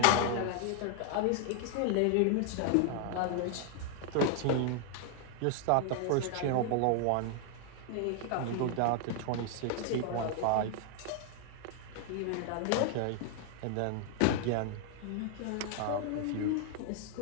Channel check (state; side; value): different; both; correlation 0.00